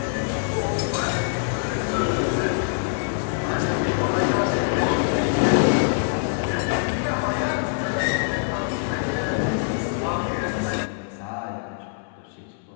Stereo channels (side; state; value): right; silent; 62 dB below the other